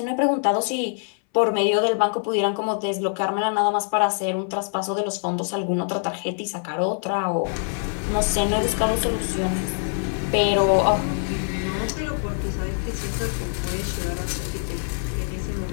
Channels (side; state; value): right; silent; 62 dB below the other